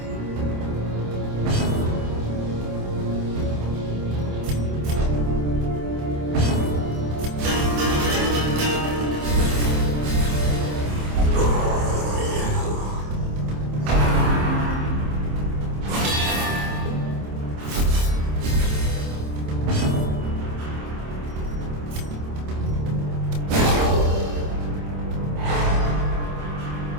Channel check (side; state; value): left; late; 27 ms